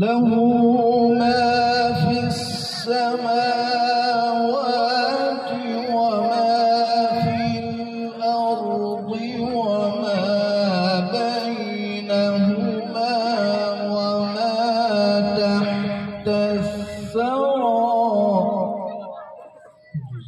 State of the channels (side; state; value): both; identical; correlation 1.00